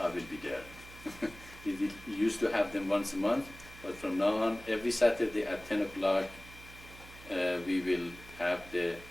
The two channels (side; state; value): right; noise; hum, 18 dB below the sound